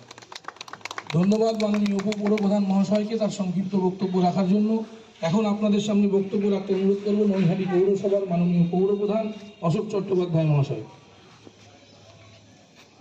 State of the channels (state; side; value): identical; both; correlation 1.00